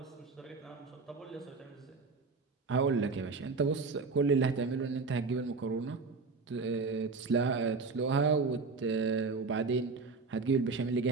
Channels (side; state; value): left; quieter; 4.3 dB